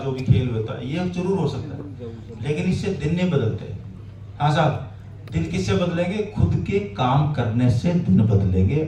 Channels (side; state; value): both; identical; correlation 1.00